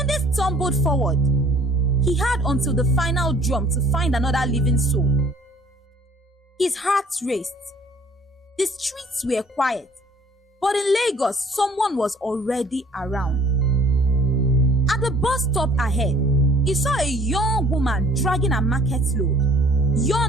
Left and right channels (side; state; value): both; normal; correlation 0.55